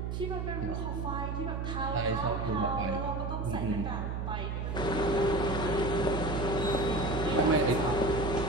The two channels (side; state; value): right; noise; hum, 3 dB below the sound